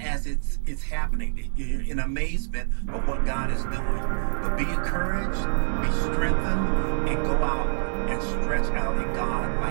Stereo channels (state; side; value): silent; left; digital silence